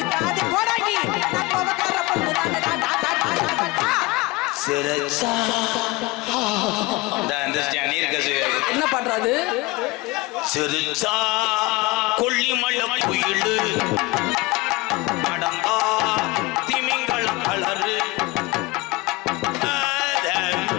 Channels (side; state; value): right; quieter; 22.3 dB